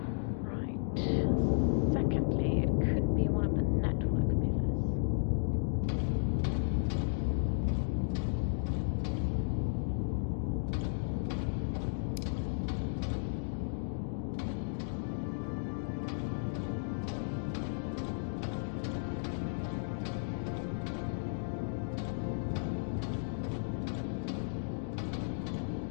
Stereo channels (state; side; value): silent; right; digital silence